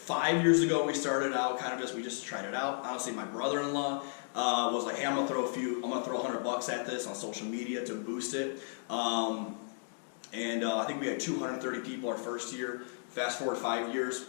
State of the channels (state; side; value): silent; right; digital silence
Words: years ago. We started out we just tried it out. Honestly, my brother-in-law was like, hey, I'm gonna throw $100 at this on social media to boost it. I think we had 230 people our first year. Fast forward 5